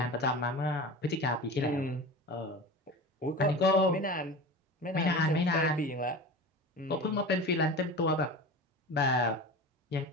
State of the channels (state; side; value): normal; both; correlation 0.32